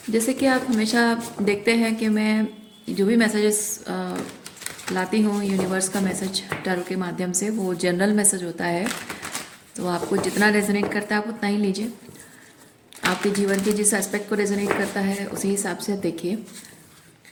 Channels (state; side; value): identical; both; correlation 1.00